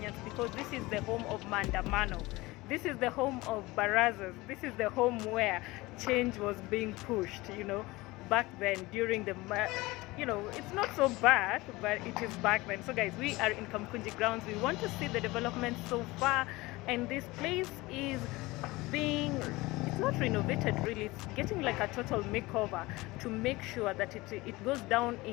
because this is the home of Mandamano. This is the home of Barazas. This is the home where change was being pushed, back then during the, it's not so bad, but it is back then. So guys, we are in Kamukunji Grounds. We want to see the development so far, and this place is it's not renovated really, it's getting like a total makeover to make sure that it goes down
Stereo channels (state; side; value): quieter; right; 21.1 dB